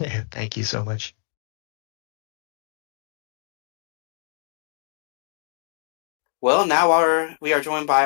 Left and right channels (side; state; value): right; silent; 61 dB below the other